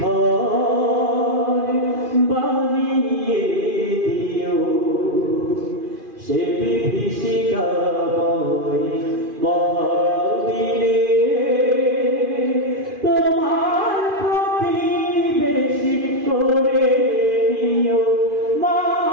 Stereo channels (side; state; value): left; late; 2.5 ms